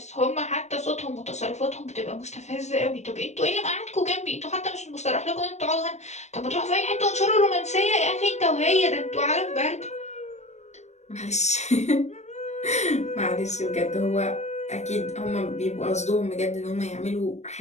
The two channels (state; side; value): late; right; 0.33 ms